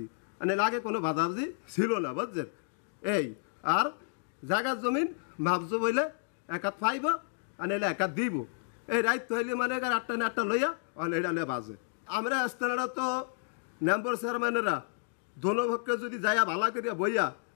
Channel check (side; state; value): right; silent; digital silence